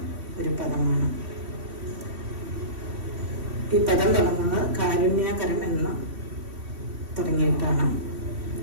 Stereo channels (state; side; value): late; left; 3.1 ms